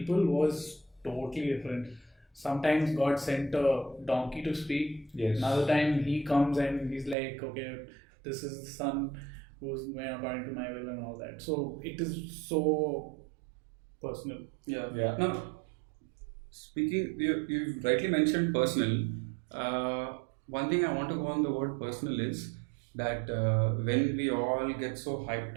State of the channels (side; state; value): left; drops out; at 7.2 s